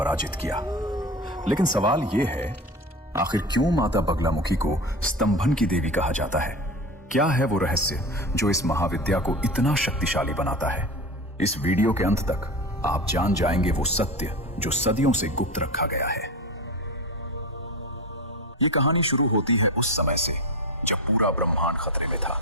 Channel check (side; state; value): both; normal; correlation 0.27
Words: किया। लेकिन सवाल यह है, आखिर क्यों माता बगलामुखी को स्तंभन की देवी कहा जाता है? क्या है वो रहस्य जो इस महाविद्या को इतना शक्तिशाली बनाता है? इस वीडियो के अंत तक आप जान जाएंगे वो सत्य जो सदियों से गुप्त रखा गया है। ये कहानी शुरू होती है उस समय से जब पूरा ब्रह्मांड खतरे में था।